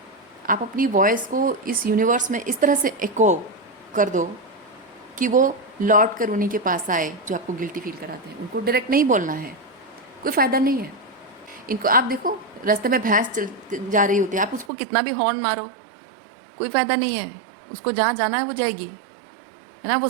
आप अपनी वॉइस को इस यूनिवर्स में इस तरह से एको कर दो कि वो लौट कर उन्हीं के पास आए जो आपको गिल्टी फील कराते हैं। उनको डायरेक्ट नहीं बोलना है, कोई फ़ायदा नहीं है। इनको आप देखो, रास्ते में भैंस चल जा रही होती है, आप उसको कितना भी हॉर्न मारो, कोई फ़ायदा नहीं है। उसको जहाँ जाना है वो जाएगी, है ना, वो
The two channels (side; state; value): left; drops out; at 14.7 s